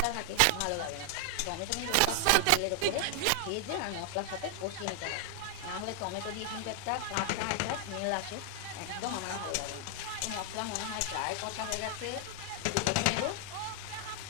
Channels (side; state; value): both; different; correlation 0.00